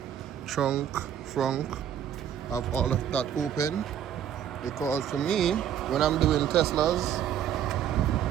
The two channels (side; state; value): left; quieter; 9.7 dB